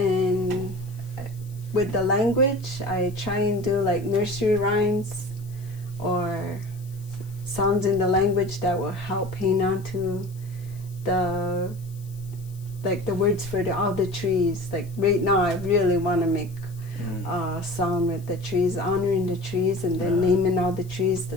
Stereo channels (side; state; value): left; noise; hiss, 24 dB below the sound